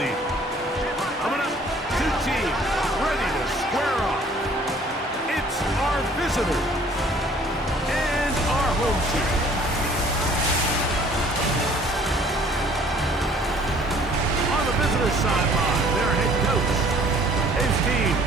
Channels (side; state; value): both; normal; correlation 0.55